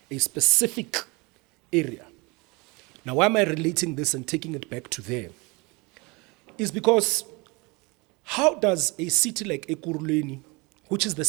a specific area. Now, why am I relating this and taking it back to there? Is because how does a city like Ekurhuleni, which is the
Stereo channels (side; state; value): left; quieter; 26.8 dB